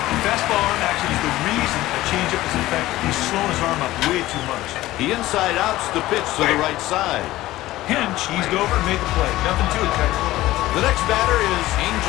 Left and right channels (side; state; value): right; quieter; 16.5 dB